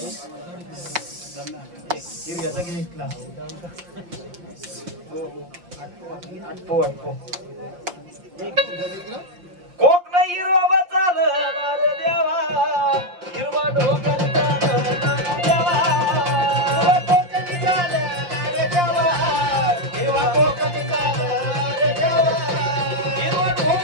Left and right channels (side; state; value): left; late; 5.6 ms